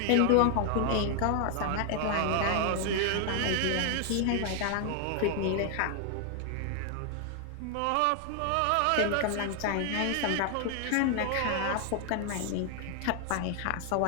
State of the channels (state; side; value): different; both; correlation 0.00